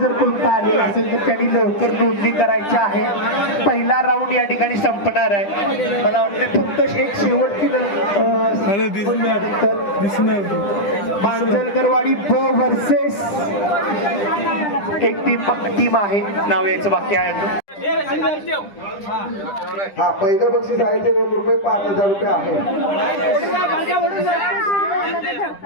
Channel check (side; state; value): right; late; 10 ms